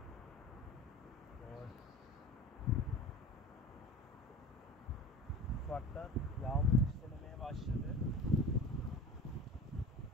Ufaktan yağmur çiselemeye başladı.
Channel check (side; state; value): both; normal; correlation 0.36